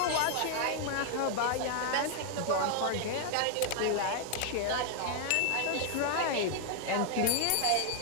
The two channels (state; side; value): different; both; correlation 0.00